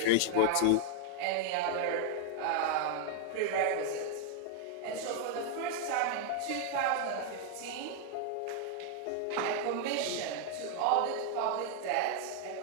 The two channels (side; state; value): both; different; correlation 0.00